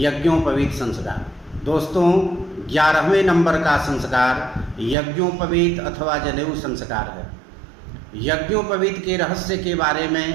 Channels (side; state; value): left; drops out; at 5.0 s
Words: संस्कार। दोस्तों, 11वें नंबर का संस्कार यज्ञोपवीत अथवा जनेऊ संस्कार है। यज्ञोपवीत के रहस्य के बारे